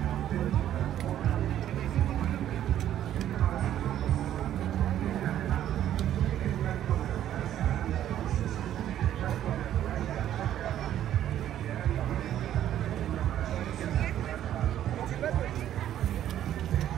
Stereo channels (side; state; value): left; quieter; 11.4 dB